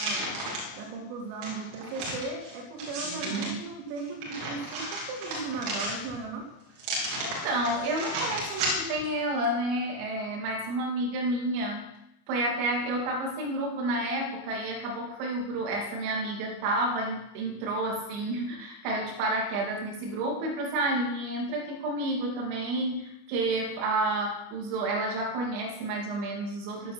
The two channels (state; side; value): late; left; 25 ms